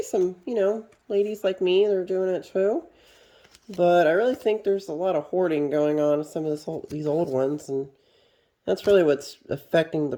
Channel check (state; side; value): identical; both; correlation 1.00